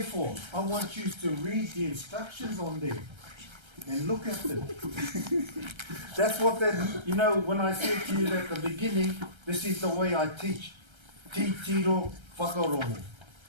for. I want you to read the instructions on there and look at them. That's what that, you know, when I said to you at the beginning, this is the way I teach. Tiro whakarongo.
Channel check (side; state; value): left; late; 1.3 ms